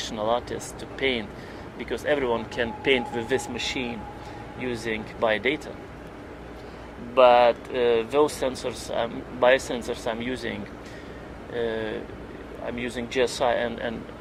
artist to paint, because everyone can paint with this machine using biodata. But those sensors, biosensors I'm using GSI and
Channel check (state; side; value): identical; both; correlation 1.00